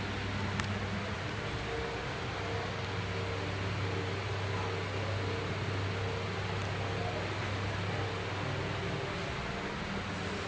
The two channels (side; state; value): both; identical; correlation 1.00